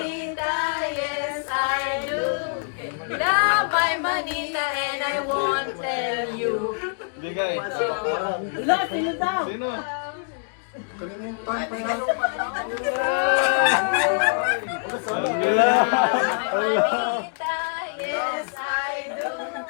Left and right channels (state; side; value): silent; right; digital silence